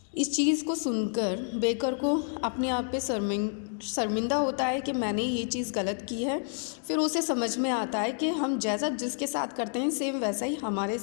इस चीज़ को सुनकर बेकर को अपने आप पे शर्मिंदा होता है कि मैंने ये चीज़ गलत की है. फिर उसे समझ में आता है कि हम जैसा जिसके साथ करते हैं सेम वैसा ही हमारे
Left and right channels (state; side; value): silent; right; 58 dB below the other